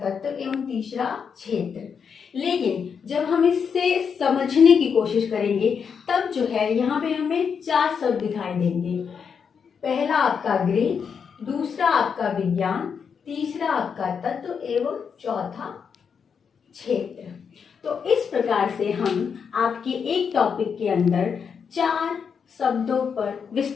एवं तीसरा क्षेत्र। लेकिन जब हम इससे समझने की कोशिश करेंगे तब जो है यहाँ पे हमें 4 शब्द दिखाई देंगे। पहला आपका गृह, दूसरा आपका विज्ञान, तीसरा आपका तत्व एवं चौथा क्षेत्र। तो इस प्रकार से हम आपके एक टॉपिक के अंदर 4 शब्दों पर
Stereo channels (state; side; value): quieter; right; 6.5 dB